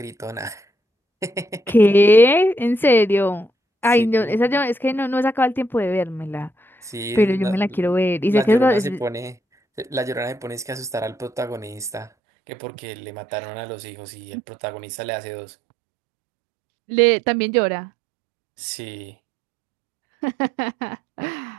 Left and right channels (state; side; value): drops out; left; at 12.1 s